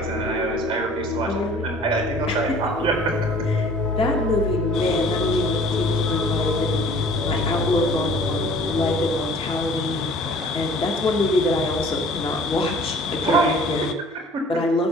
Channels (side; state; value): both; normal; correlation 0.50